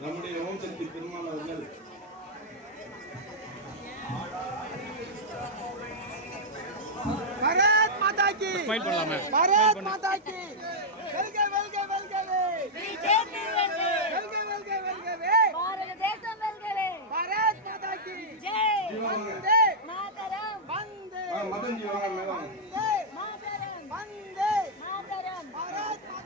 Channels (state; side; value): normal; both; correlation -0.06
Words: நம்முடைய ஓம் சக்தி பெருமாள் அவர்கள் भारत माता की भारत माता की வெல்க வெல்க வெல்கவே बीजेपी வெல்கவே வெல்க வெல்க வெல்கவே பாரத தேசம் வெல்கவே भारत माता की ஜெய் वंदे மாதரம் वंदे மதன் ஜீவாங்க மேடம் वंदे மாதரம் वंदे மாதரம் भारत